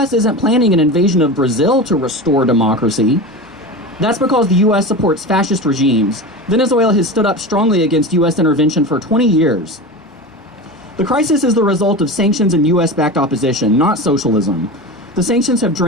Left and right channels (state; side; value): normal; both; correlation 0.27